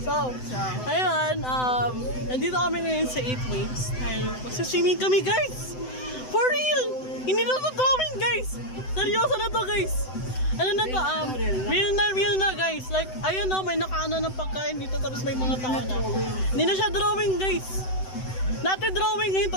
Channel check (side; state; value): right; late; 7.9 ms